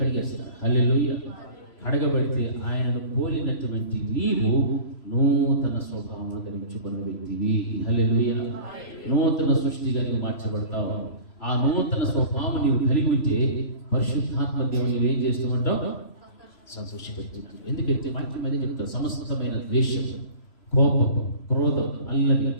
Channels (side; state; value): right; late; 3.0 ms